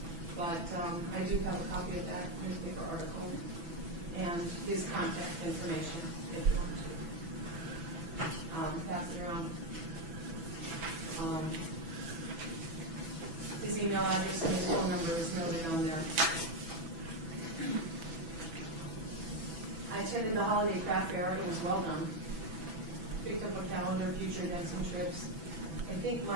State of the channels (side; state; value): left; late; 6.0 ms